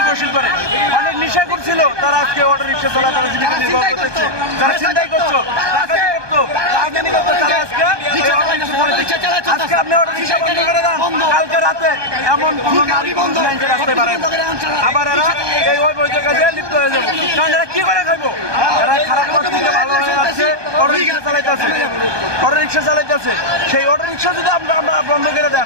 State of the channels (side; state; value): left; late; 1.2 ms